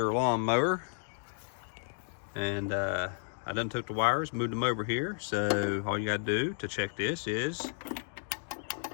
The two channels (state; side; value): silent; right; digital silence